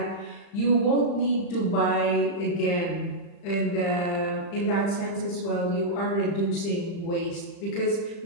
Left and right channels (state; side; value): late; right; 35 ms